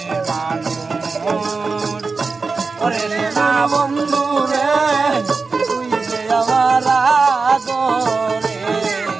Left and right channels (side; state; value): left; quieter; 4.3 dB